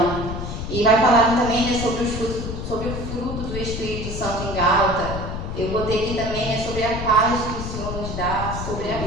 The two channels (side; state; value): left; noise; rumble, 5 dB below the sound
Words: E vai falar também, né, sobre o fruto do Espírito Santo em Gálatas. Eu botei aqui também, né, sobre a paz que o Senhor nos dá, sobre a